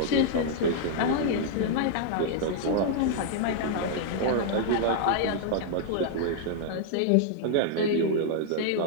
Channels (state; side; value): different; both; correlation -0.01